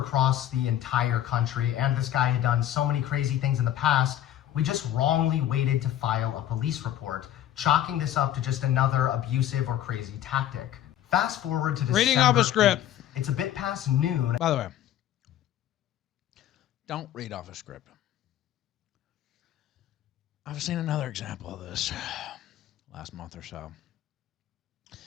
the entire country and this guy had done so many crazy things in the past, we just wrongly waited to file a police report, chalking this up to just another abusive or crazy tactic. Fast forward to December Reading off a script. 8th. It's a bit past noon. By the way, don't read off a script. I've seen another example of this last month or so.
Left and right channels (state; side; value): quieter; right; 11.8 dB